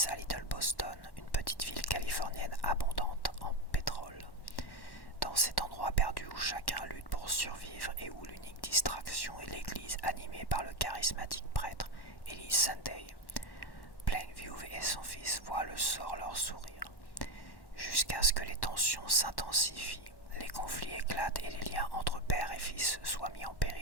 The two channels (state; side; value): late; right; 1.1 ms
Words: à Little Boston, une petite ville californienne abondante en pétrole. Dans cet endroit perdu où chacun lutte pour survivre et où l'unique distraction est l'église animée par le charismatique prêtre Eli Sunday, Plainview et son fils voient le sort leur sourire. Jusqu'à ce que les tensions s'intensifient, les conflits éclatent et les liens entre père et fils soient mis en